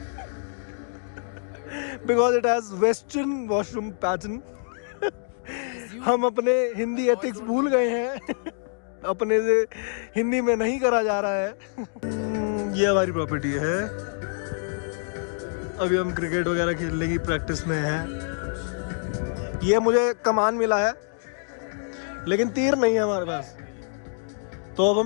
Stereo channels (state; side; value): silent; right; digital silence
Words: Because it has Western washroom pattern. हम अपने Hindi ethics भूल गए हैं। अपने से हिंदी में नहीं करा जा रहा है। ये हमारी प्रॉपर्टी है। अभी हम क्रिकेट वगैरह खेलने की प्रैक्टिस में हैं। ये मुझे कमान मिला है लेकिन तीर नहीं है हमारे पास, तो अब